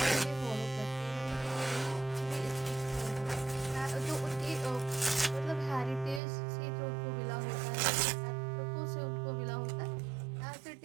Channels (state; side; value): drops out; left; at 6.2 s